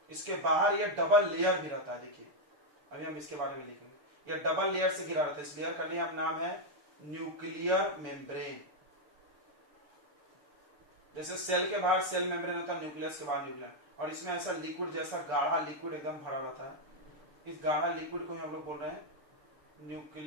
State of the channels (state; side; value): late; left; 6.9 ms